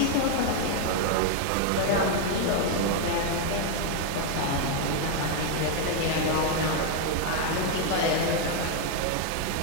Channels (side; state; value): both; different; correlation 0.00